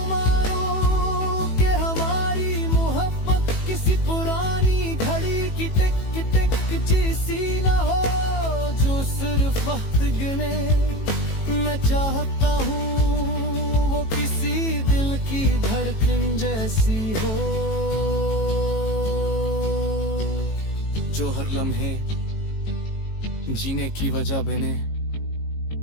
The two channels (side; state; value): right; late; 18 ms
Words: मारूं कि हमारी मोहब्बत किसी पुरानी घड़ी की टिक टिक जैसी न हो, जो सिर्फ वक्त गिने। मैं चाहता हूँ वो किसी दिल की धड़कन जैसी हो, जो हर लम्हे जीने की वजह बने,